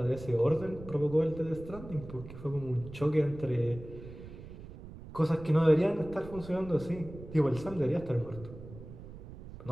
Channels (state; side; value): noise; right; rumble, 14 dB below the sound